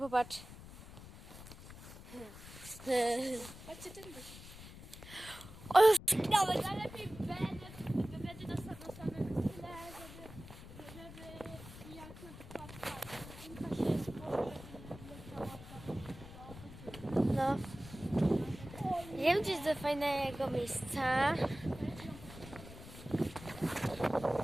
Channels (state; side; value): noise; left; rumble, 15 dB below the sound